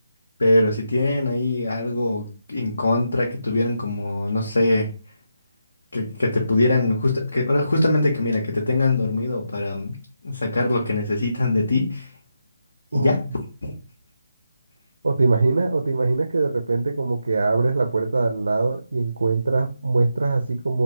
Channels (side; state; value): both; inverted; correlation -0.84